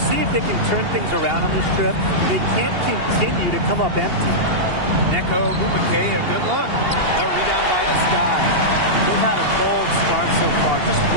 if they can turn things around on this trip. They can't continue to come up empty. Neko Agumake, a good look. The rebound by the Sky. They've had a cold start so far. Just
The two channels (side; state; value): left; late; 2.8 ms